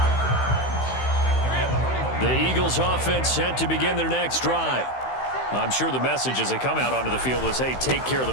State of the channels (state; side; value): late; right; 16 ms